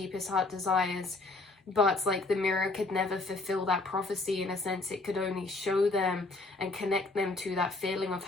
heart desires. But like the mirror could never fulfill that prophecy. In a sense, it could only show them and connect them to that feeling of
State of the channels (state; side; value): quieter; right; 3.3 dB